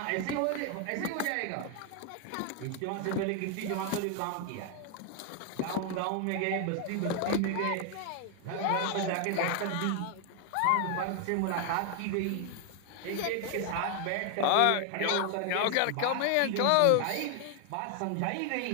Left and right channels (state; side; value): different; both; correlation 0.00